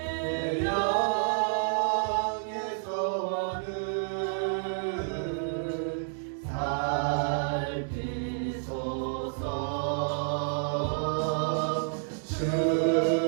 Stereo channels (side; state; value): left; silent; digital silence